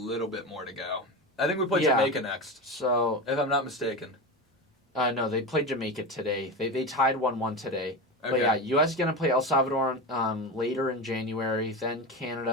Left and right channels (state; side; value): normal; both; correlation 0.22